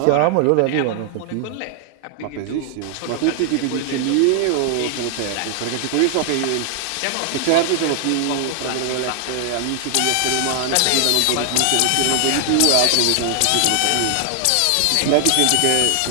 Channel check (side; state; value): both; different; correlation 0.00